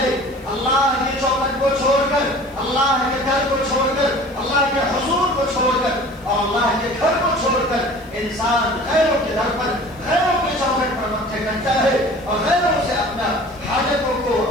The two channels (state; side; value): noise; left; hiss, 27 dB below the sound